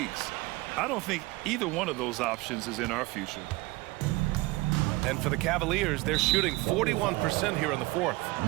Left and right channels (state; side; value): quieter; left; 21.8 dB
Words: I don't think either one of those options is in our future. And for the Cavaliers, they're shooting 41% here in the fourth.